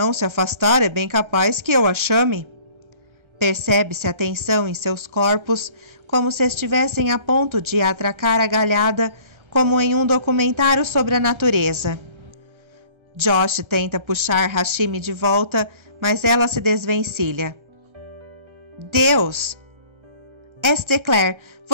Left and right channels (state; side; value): late; left; 1.3 ms